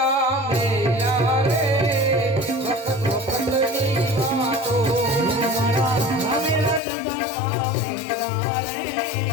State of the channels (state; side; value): drops out; right; at 6.8 s